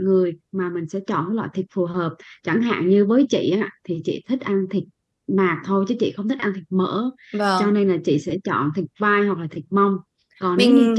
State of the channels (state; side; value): identical; both; correlation 1.00